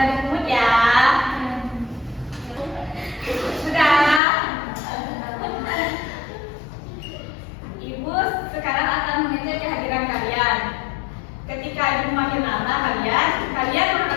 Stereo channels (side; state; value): right; drops out; at 4.2 s